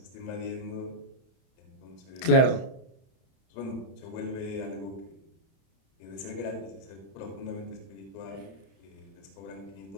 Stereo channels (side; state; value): right; late; 31 ms